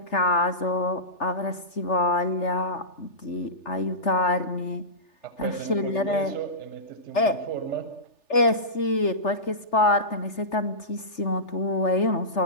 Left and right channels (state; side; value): late; right; 3.4 ms